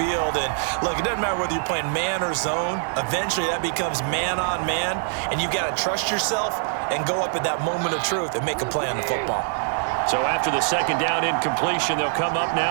And look, it doesn't matter whether you're playing man or zone. Eventually, that becomes man on man. And you've got to trust yourself and go up at that moment of truth and make a play on the football. So after the 2nd down incompletion, they'll come up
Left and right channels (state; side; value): silent; left; digital silence